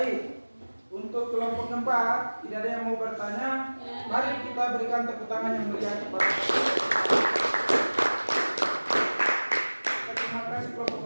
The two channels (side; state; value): both; inverted; correlation -1.00